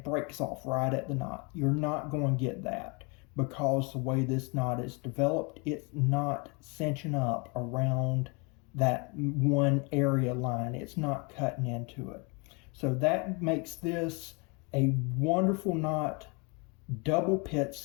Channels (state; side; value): quieter; right; 31.2 dB